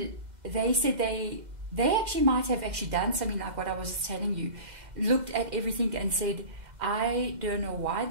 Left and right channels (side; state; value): left; late; 2.0 ms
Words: they said they actually might have actually done something like what I was telling you. Looked at everything and said, I don't know why